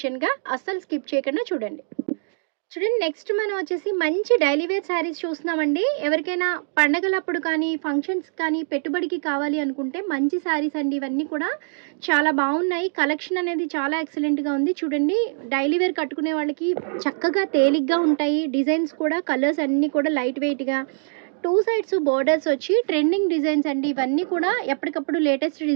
అస్సలు స్కిప్ చేయకుండా చూడండి. చూడండి, నెక్స్ట్ మనం వచ్చేసి మంచి డైలీ వేర్ శారీస్ చూస్తున్నామండి. ఎవరికైనా పండగలప్పుడు కానీ ఫంక్షన్స్ కానీ పెట్టుబడికి కావాలి అనుకుంటే మంచి శారీస్ అండి. ఇవన్నీ కూడా చాలా బాగున్నాయి. కలెక్షన్ అనేది చాలా ఎక్సలెంట్గా ఉంది. చూడండి, డైలీ వేర్ కట్టుకునే వాళ్ళకి చక్కగా తేలిగ్గా ఉంటాయి. డిజైన్స్ కూడా కలర్స్ అన్నీ కూడా లైట్ వెయిట్గా, 2 సైడ్స్ బోర్డర్స్ వచ్చి ట్రెండింగ్ డిజైన్స్ అండి. ఇవన్నీ కూడా ఎప్పటికప్పుడు లేటెస్ట్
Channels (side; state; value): left; silent; digital silence